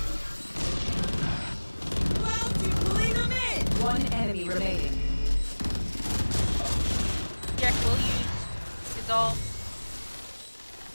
One enemy remaining. Jack will use his ult.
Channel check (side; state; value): both; inverted; correlation -1.00